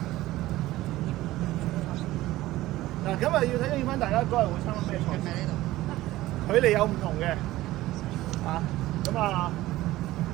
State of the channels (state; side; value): quieter; left; 16.6 dB